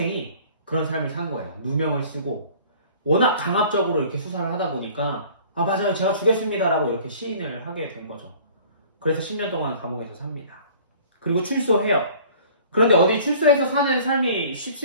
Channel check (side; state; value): both; inverted; correlation -0.49